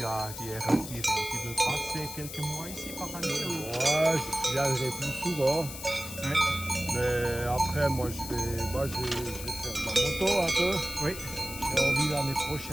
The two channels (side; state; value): left; noise; hiss, 10 dB below the sound